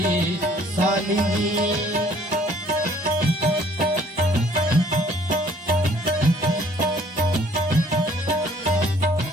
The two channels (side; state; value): both; normal; correlation 0.59